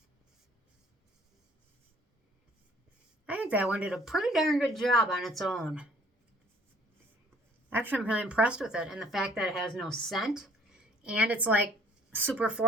I think that one did a pretty darn good job on its own. Actually, I'm really impressed with it. And the fact that it has no scent and it's like super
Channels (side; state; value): both; normal; correlation 0.58